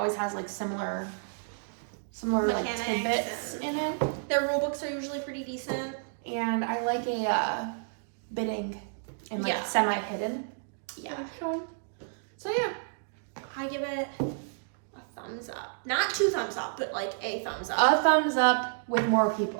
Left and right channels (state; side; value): silent; left; digital silence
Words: has like similar like Mechanics tidbits in it. Their rule books are usually pretty decent. And I like a bidding and like semi-hidden. Yeah. So yeah. I give it a thumbs up. Not 2 thumbs up, but like a thumbs up. A thumbs up with more